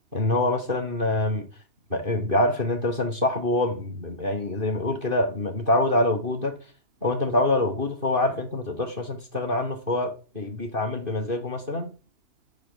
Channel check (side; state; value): left; late; 2.5 ms